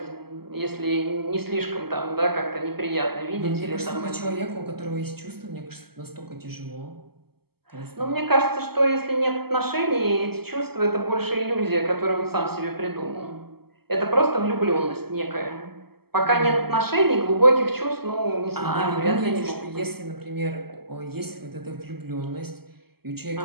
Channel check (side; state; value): left; late; 0.96 ms